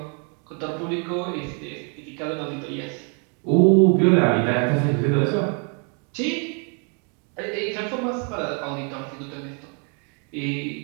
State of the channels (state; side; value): quieter; left; 38.6 dB